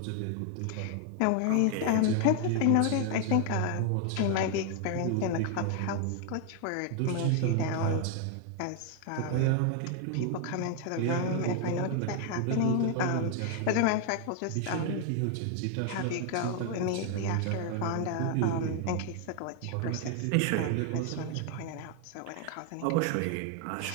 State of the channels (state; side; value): different; both; correlation 0.00